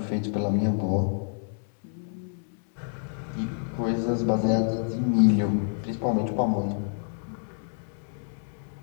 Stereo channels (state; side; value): silent; right; 59 dB below the other